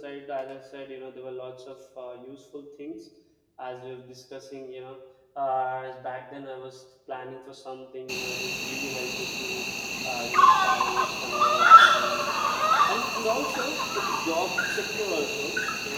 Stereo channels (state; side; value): identical; both; correlation 1.00